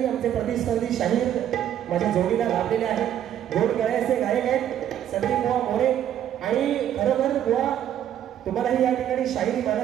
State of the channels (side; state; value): left; quieter; 10.7 dB